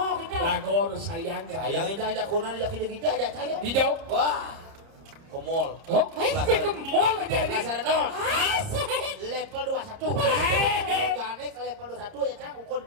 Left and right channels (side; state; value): left; late; 30 ms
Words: gitu. Lagor sayang. Sayang ini aja kunan aja kita aja saya. Hijau. Wah, ke mall. Oh, ke mall aja ini. Dasar non. Asik. Level 21. Gane ke level 21 ya cang, ukur